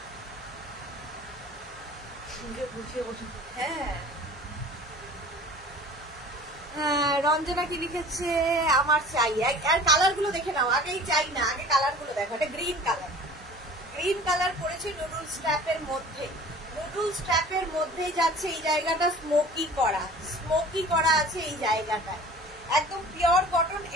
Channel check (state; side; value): normal; both; correlation 0.44